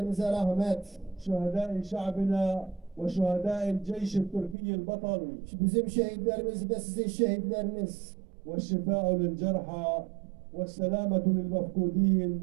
rahmet. شهداء شعبنا وشهداء الجيش التركي البطل. Bizim şehitlerimiz ve sizin şehitleriniz. والشفاء للجرحى والسلامة للمفقودين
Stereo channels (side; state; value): left; drops out; at 4.5 s